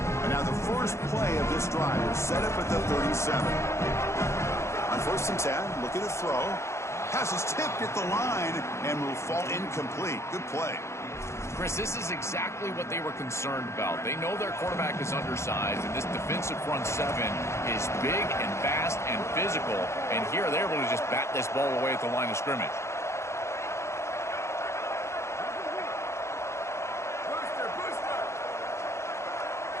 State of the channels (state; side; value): late; right; 0.13 ms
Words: And now the first play of this drive is set up at the 37. On first and 10, looking to throw. Pass is tipped at the line and will fall incomplete. Good play. Chris, this is exactly what they were concerned about. They know their quarterback is undersized, and this defensive front seven is big and fast and physical. And here they're able to just bat this ball away at the line of scrimmage.